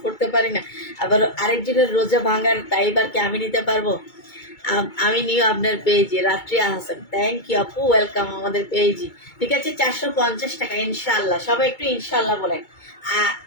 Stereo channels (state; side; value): late; right; 2.2 ms